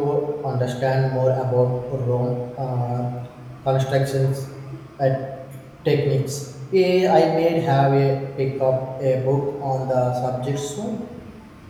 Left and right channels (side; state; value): both; identical; correlation 1.00